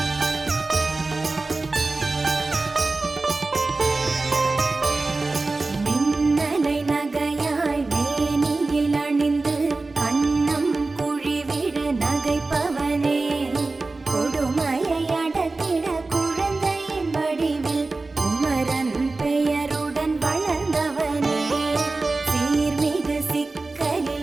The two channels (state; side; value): quieter; left; 3.5 dB